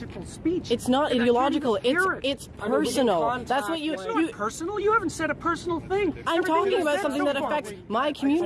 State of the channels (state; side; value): identical; both; correlation 1.00